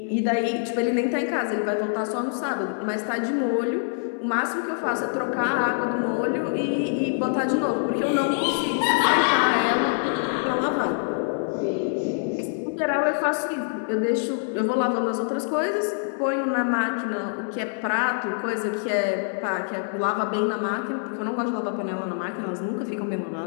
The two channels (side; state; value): right; silent; 62 dB below the other